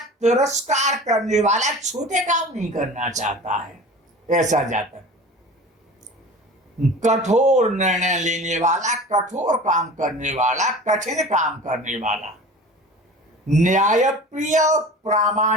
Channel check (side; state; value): both; normal; correlation 0.38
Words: करने वाला, छोटे काम नहीं करना चाहता है ऐसा जातक, कठोर निर्णय लेने वाला, कठोर काम करने वाला, कठिन काम करने वाला, न्यायप्रिय और